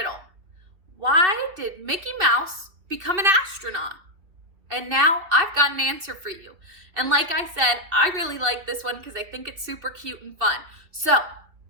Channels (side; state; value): left; late; 2.7 ms